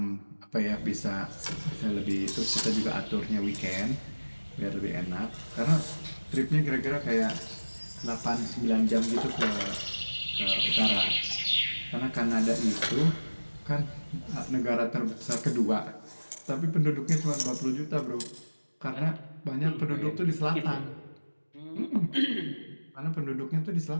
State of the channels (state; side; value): inverted; both; correlation -1.00